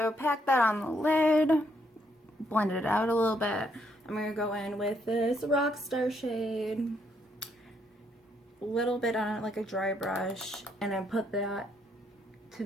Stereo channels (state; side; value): normal; both; correlation 0.73